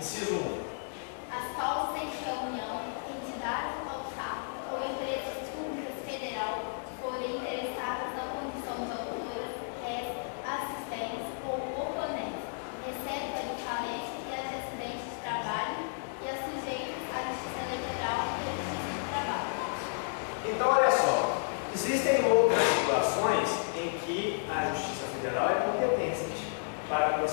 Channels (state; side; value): silent; right; digital silence